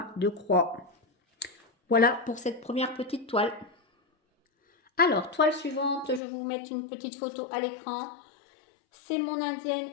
de croix. Voilà pour cette première petite toile. Alors, toile suivante, je vais vous mettre une petite photo à l'écran. C'est mon indienne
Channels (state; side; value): drops out; right; at 6.2 s